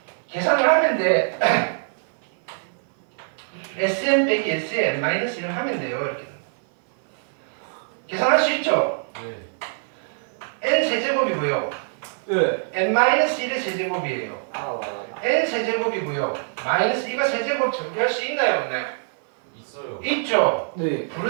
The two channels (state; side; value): silent; left; 57 dB below the other